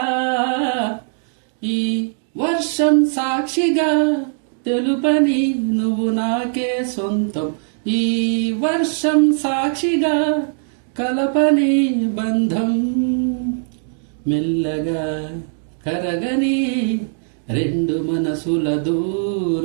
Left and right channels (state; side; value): silent; left; digital silence